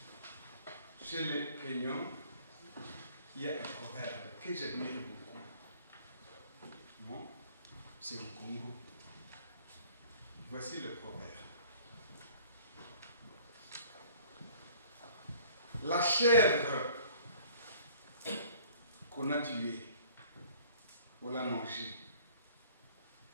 Chez les Kenyans, il y a un proverbe que j'admire beaucoup. Non, c'est au Congo. Voici le proverbe. La chèvre qu'on a tuée, on l'a mangée,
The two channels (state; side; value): inverted; both; correlation -0.54